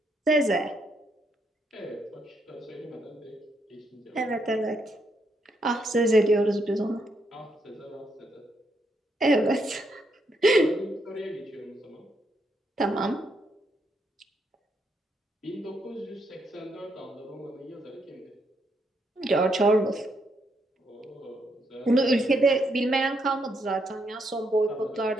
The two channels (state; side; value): normal; both; correlation 0.77